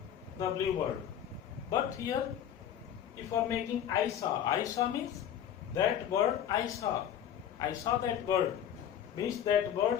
the blue bird. But here, if you are making I saw means that bird I saw. I saw that bird. Means that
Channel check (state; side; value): quieter; right; 9.9 dB